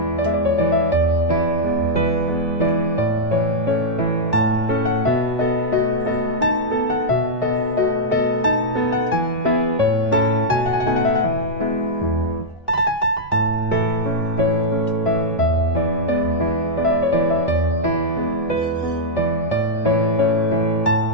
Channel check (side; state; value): both; normal; correlation -0.04